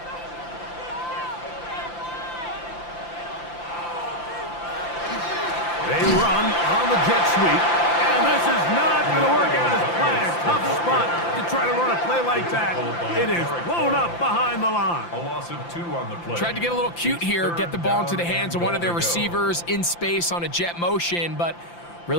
They run on the jet sweep, and this is not going to work out as planned. Tough spot to try to run a play like that. It is blown up behind the line. A loss of 2 on the play. Tried to get a little cute here, get the ball into the hands of one of their receivers in space on a jet motion, but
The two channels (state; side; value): late; right; 5.8 ms